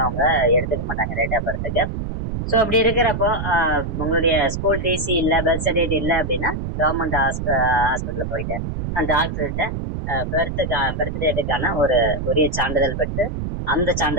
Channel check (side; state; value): right; noise; rumble, 4 dB below the sound